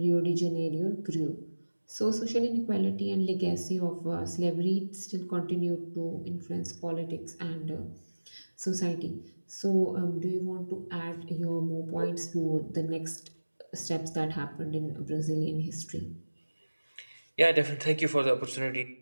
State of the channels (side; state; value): both; inverted; correlation -1.00